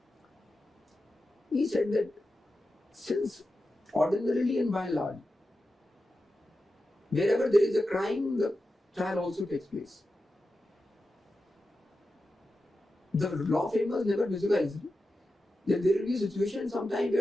He said that since ordinarily and by and large, wherever there is a crime, the trial also takes place. The law framers never visualized that there will be a situation sometime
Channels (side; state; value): both; normal; correlation 0.91